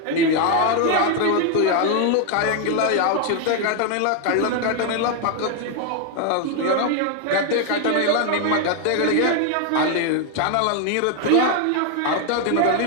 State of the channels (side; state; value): both; different; correlation 0.00